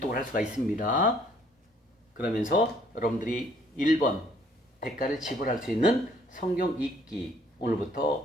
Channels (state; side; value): normal; both; correlation 0.62